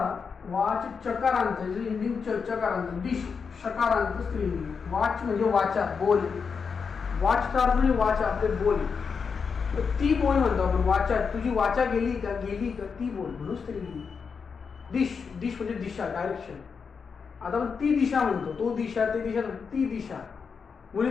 वाच चकारांत, इंडिंग चकारांत. डिश शकारांत स्त्रीलिंगी. वाच म्हणजे वाचा, बोल. वाचचा अर्थ म्हणजे वाचा, आपले बोल. ती बोल म्हणतो आपण. वाचा, तुझी वाचा गेली का ती बोल, म्हणून स्त्रीलिंगी. डिश म्हणजे दिशा, डायरेक्शन. आता आपण ती दिशा म्हणतो. तो दिशा, ते दिशा, ती दिशा.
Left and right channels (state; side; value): quieter; right; 5.7 dB